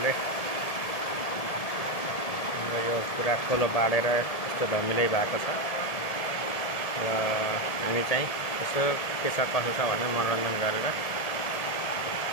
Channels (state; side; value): late; right; 1.7 ms